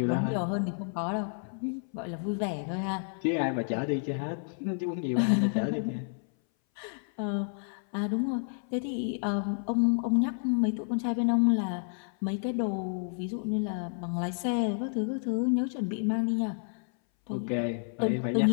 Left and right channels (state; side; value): silent; right; 58 dB below the other